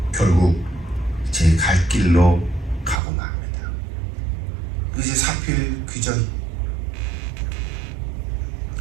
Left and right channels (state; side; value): drops out; left; at 3.0 s